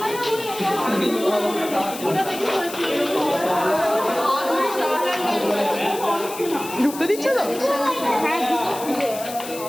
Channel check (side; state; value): left; noise; hiss, 12 dB below the sound